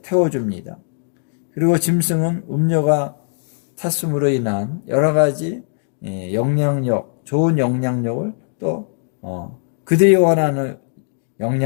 태워줍니다. 그리고 짐승은 음녀가 탔음으로 인한 여러 가지 영향력, 좋은 영향력을 또 그들이 원하는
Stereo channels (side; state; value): right; silent; digital silence